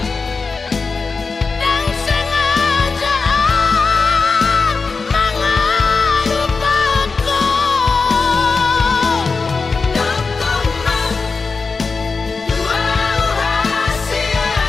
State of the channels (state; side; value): quieter; right; 4.4 dB